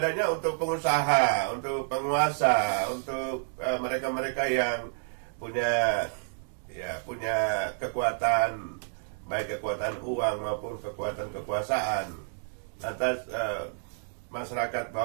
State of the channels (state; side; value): silent; left; digital silence